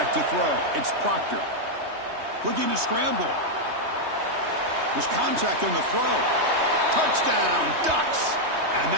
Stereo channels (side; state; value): left; late; 3.2 ms